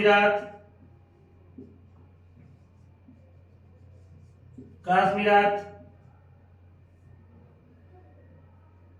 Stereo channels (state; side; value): identical; both; correlation 1.00